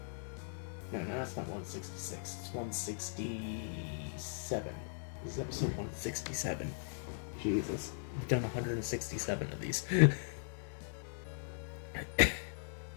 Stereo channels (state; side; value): silent; right; digital silence